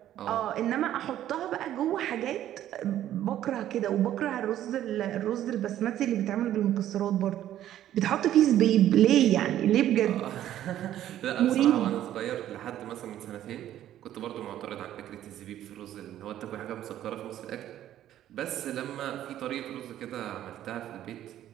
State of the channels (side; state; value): left; quieter; 12.2 dB